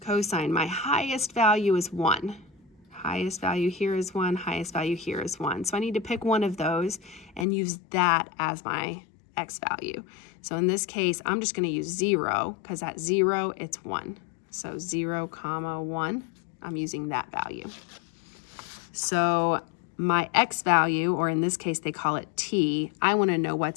cosine, my highest value is 1. Highest value here is 1, highest value here is 1. So I need to pick one of those and use that as my x value. So in this case, I'm just going to use 0 because at 0, it's 1. So 0, 1, I'm using that value. So my x value, or in this case, they call it t, I want to know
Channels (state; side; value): drops out; right; at 7.5 s